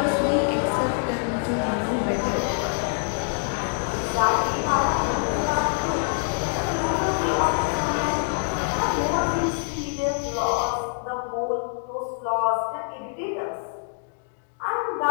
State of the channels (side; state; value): right; silent; digital silence